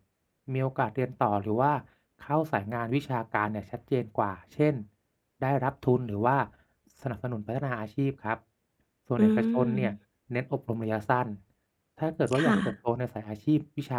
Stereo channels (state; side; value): identical; both; correlation 1.00